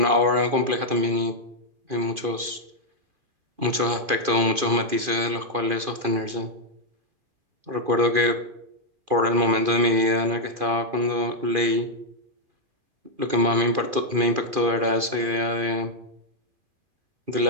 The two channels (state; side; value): late; left; 2.4 ms